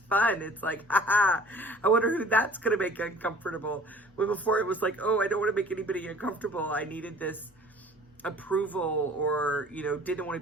fun. It's like, haha, I wonder who that's going to make uncomfortable. When before it was like, oh, I don't want to make anybody uncomfortable. I needed this approval, or, you know, didn't want to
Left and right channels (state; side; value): normal; both; correlation 0.49